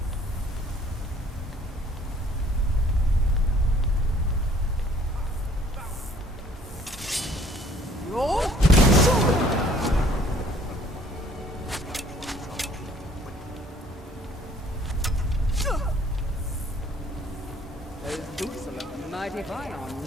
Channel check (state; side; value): normal; both; correlation 0.58